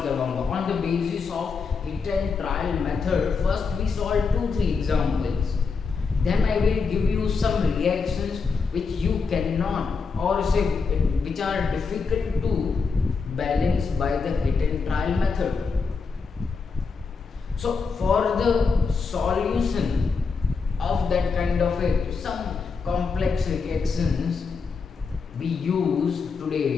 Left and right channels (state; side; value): quieter; right; 5.0 dB